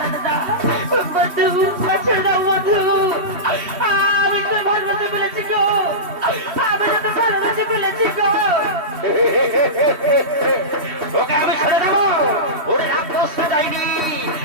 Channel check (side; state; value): left; late; 3.1 ms